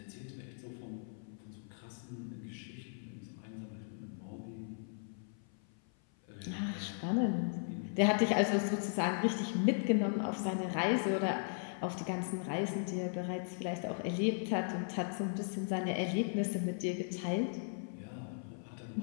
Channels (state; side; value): silent; right; 53 dB below the other